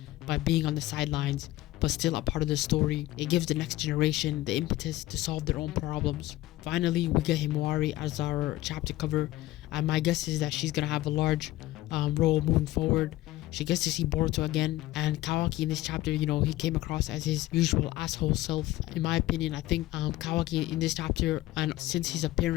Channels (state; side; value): quieter; right; 16.8 dB